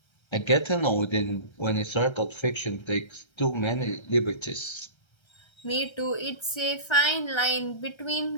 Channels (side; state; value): right; late; 1.3 ms